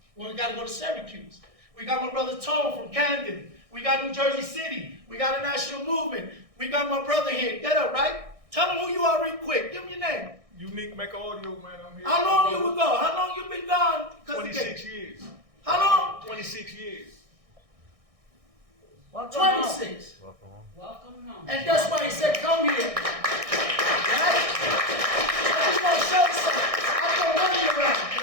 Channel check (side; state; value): left; late; 1.6 ms